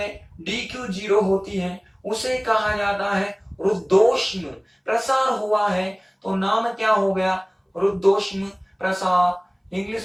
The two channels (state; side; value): identical; both; correlation 1.00